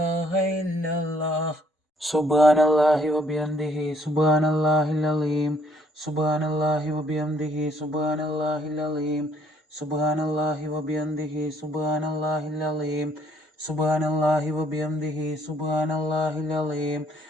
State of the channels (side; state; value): both; normal; correlation 0.65